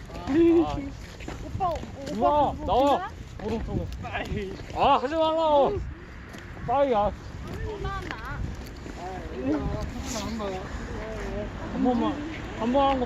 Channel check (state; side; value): identical; both; correlation 1.00